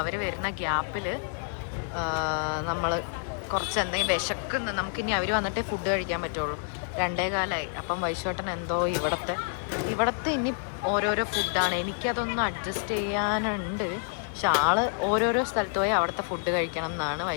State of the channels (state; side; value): silent; right; digital silence